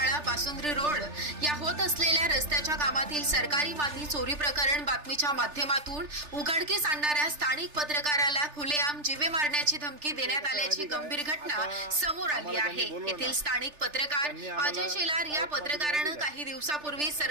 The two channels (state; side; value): late; left; 3.4 ms